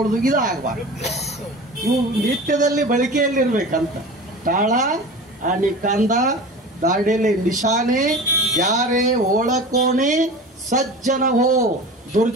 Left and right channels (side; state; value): both; normal; correlation 0.35